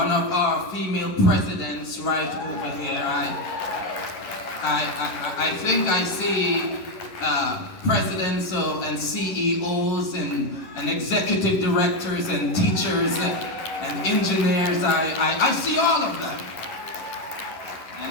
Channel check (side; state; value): right; late; 11 ms